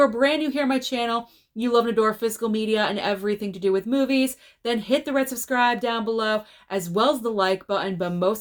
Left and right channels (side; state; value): both; identical; correlation 1.00